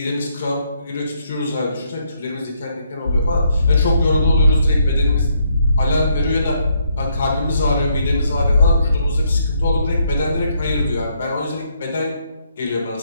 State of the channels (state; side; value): inverted; both; correlation -0.73